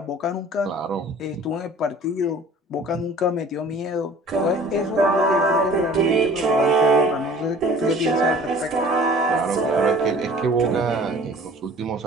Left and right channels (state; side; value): normal; both; correlation 0.48